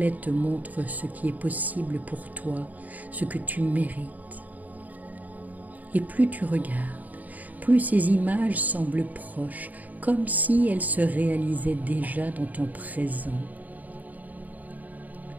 te montrent ce qui est possible pour toi, ce que tu mérites. Et plus tu regardes, plus ces images semblent proches, comme si elles se réalisaient déjà dans ton présent.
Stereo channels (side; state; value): left; late; 0.078 ms